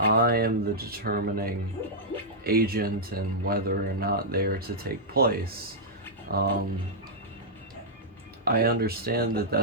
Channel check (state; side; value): normal; both; correlation -0.09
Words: am the determining agent and whether or not they are to take place. I understand that